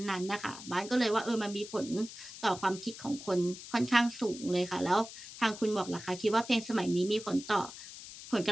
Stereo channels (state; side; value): noise; left; hiss, 14 dB below the sound